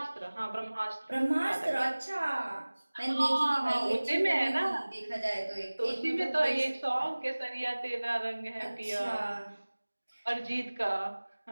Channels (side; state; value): both; inverted; correlation -1.00